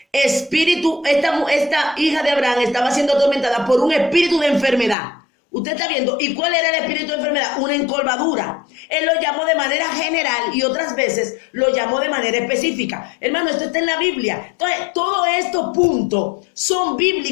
espíritu, esta hija de Abraham estaba siendo atormentada por un espíritu de enfermedad. Usted está viendo. ¿Y cuál era el espíritu de enfermedad? Una encorvadura. Él lo llamó de manera general y otras veces lo llamó de manera específica. Hermano, esto está en la Biblia. Entonces, todos estos puntos son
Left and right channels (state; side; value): drops out; right; at 5.0 s